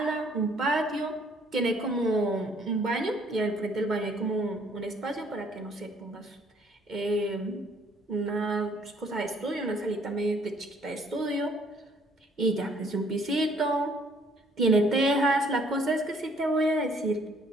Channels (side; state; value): both; normal; correlation 0.62